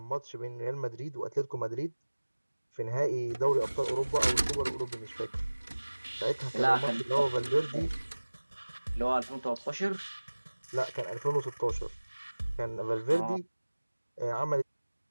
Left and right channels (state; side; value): inverted; both; correlation -1.00